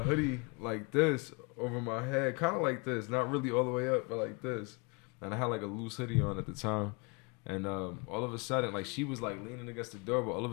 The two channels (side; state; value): right; quieter; 30.6 dB